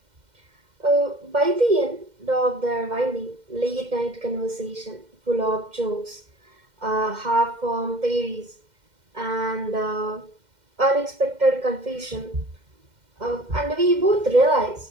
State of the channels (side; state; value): left; late; 2.1 ms